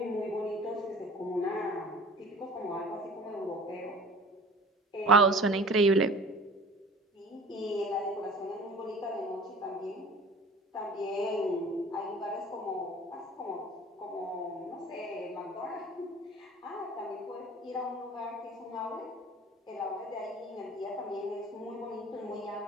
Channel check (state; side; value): normal; both; correlation 0.44